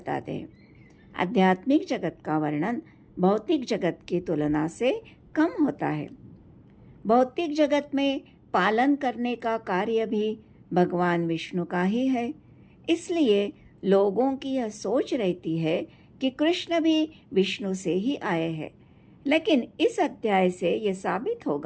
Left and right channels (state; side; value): identical; both; correlation 1.00